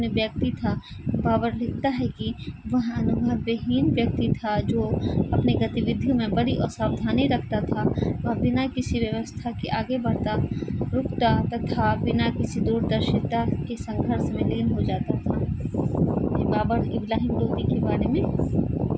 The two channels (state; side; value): identical; both; correlation 1.00